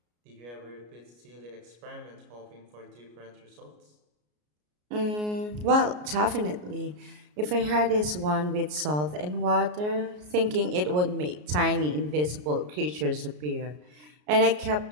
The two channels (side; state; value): left; late; 33 ms